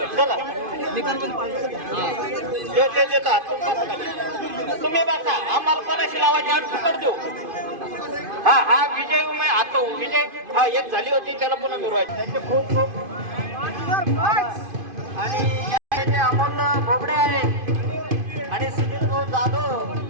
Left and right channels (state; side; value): late; left; 2.5 ms